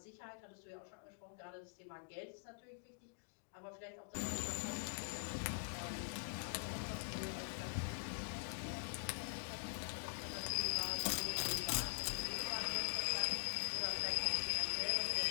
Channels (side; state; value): right; silent; digital silence